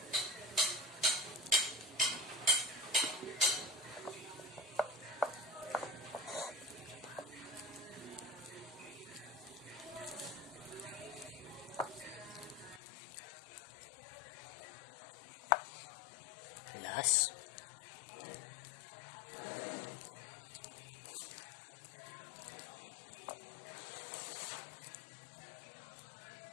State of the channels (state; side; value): drops out; right; at 12.8 s